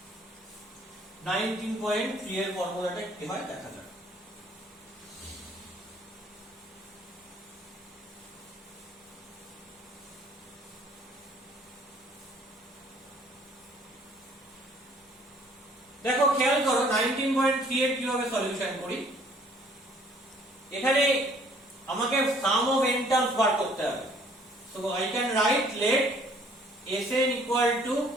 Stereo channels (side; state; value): both; normal; correlation 0.58